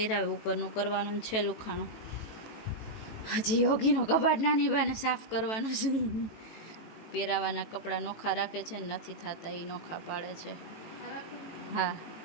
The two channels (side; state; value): right; late; 18 ms